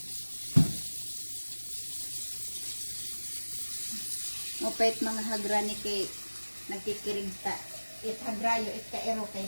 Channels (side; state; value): both; inverted; correlation -1.00